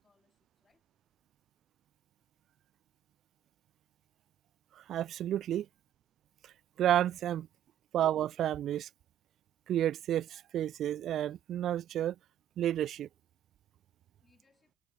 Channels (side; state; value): left; quieter; 11.1 dB